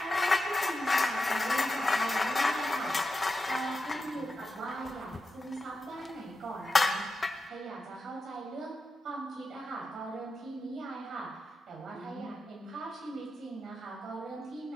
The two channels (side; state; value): both; normal; correlation 0.90